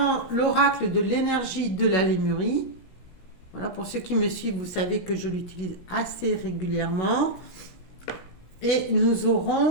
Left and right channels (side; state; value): right; late; 16 ms